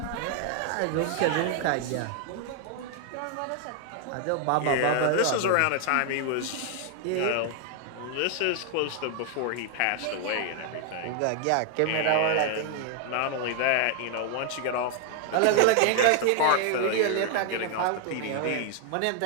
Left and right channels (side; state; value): both; different; correlation 0.00